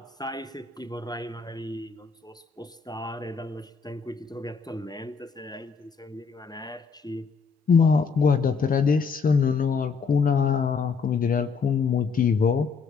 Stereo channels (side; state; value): right; quieter; 5.4 dB